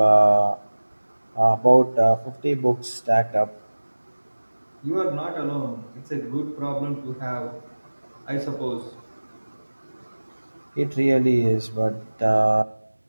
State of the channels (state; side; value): inverted; both; correlation -1.00